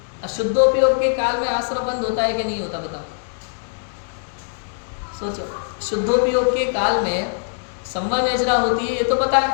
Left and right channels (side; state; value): right; silent; digital silence